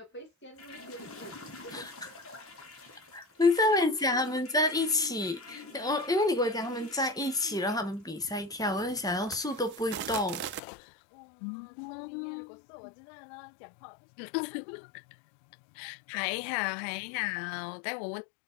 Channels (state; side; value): drops out; right; at 10.6 s